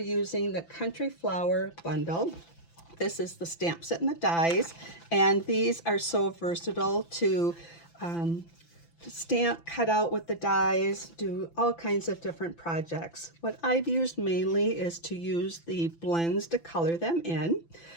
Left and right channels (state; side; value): late; right; 5.9 ms